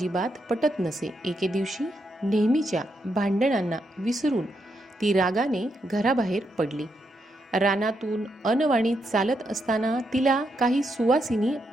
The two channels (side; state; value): both; normal; correlation 0.81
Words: पटत नसे। एके दिवशी नेहमीच्या भांडणांना विसरून ती रागाने घराबाहेर पडली। रानातून अनवाणी चालत असताना तिला काही सुवासिनी